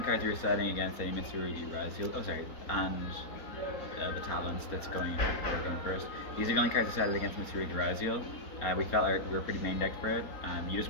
cards we were setting against any Mitsurugi Raziel. Oh, sorry, and the Talents that's going first. These are the only cards we setted against Mitsurugi Raziel. We felt like we were pretty main decked for it. You just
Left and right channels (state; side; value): late; right; 4.3 ms